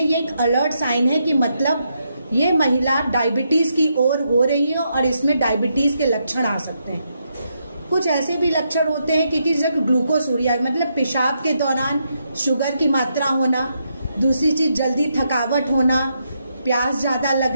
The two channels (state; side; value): inverted; both; correlation -0.80